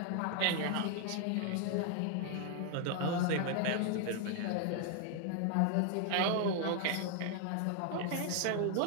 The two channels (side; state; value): both; different; correlation 0.00